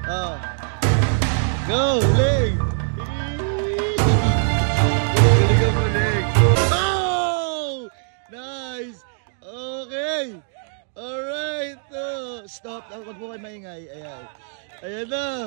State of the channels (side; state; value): left; silent; digital silence